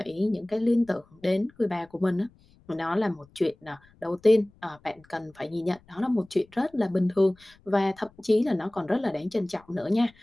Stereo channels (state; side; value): noise; left; rumble, 30 dB below the sound